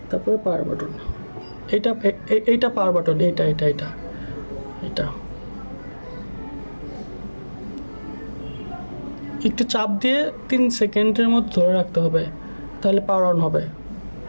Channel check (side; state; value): both; inverted; correlation -1.00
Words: তারপরে পাওয়ার বাটন, এইটা পাওয়ার বাটন, এটা একটু চাপ দিয়ে 3 সেকেন্ডের মধ্যে ধরে রাখতে হবে, তাহলে পাওয়ার অন হবে।